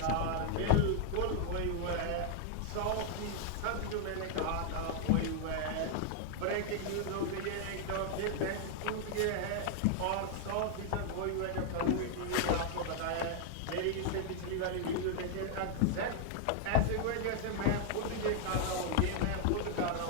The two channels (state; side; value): different; both; correlation 0.00